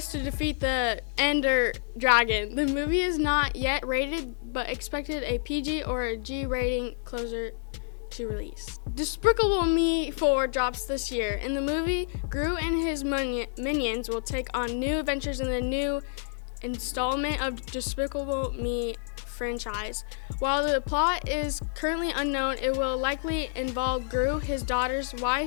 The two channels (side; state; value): right; silent; digital silence